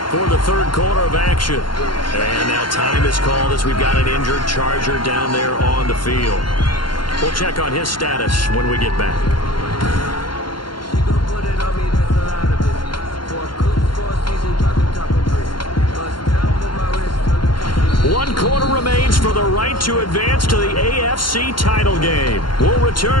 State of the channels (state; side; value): late; right; 0.72 ms